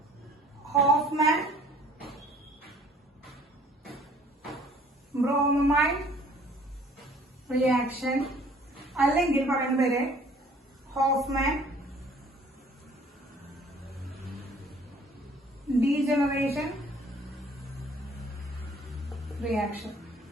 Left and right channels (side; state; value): both; normal; correlation 0.55